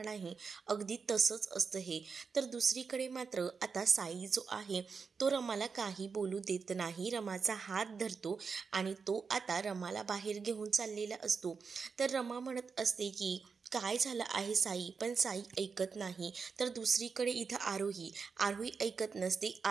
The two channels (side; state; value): left; quieter; 5.4 dB